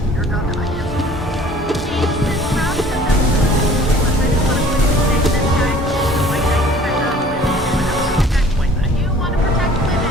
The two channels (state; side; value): normal; both; correlation 0.50